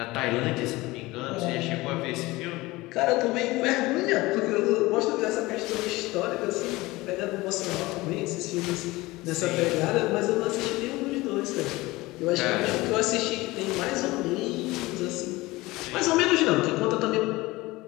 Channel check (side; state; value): right; quieter; 20.4 dB